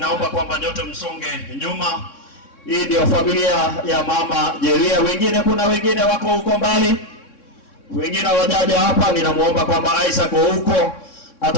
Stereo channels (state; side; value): late; right; 3.6 ms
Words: kwamba nyote msonge nyuma. Hii ndio familia ya mama Jeria. Wengine kuna wengine wako huko mbali, wengine wajaja hapa. Ninamuomba kwamba Isaac huko